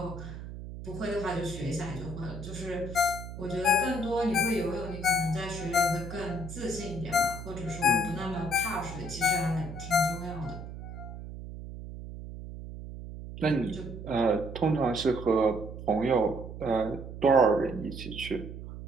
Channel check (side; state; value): right; noise; hum, 10 dB below the sound